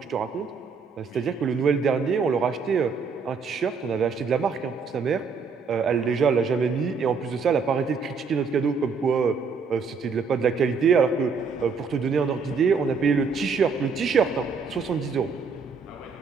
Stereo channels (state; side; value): quieter; left; 5.1 dB